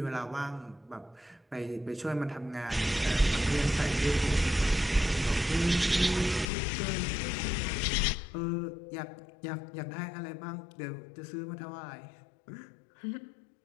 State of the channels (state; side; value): drops out; right; at 6.5 s